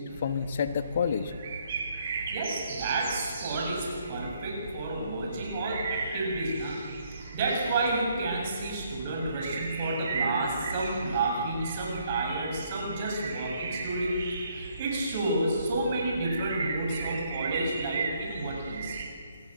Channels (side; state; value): both; inverted; correlation -0.68